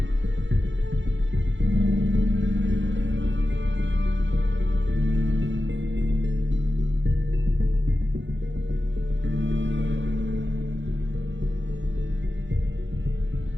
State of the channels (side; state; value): left; late; 0.54 ms